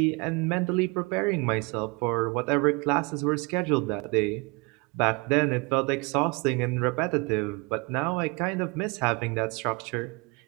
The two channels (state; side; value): quieter; left; 28.8 dB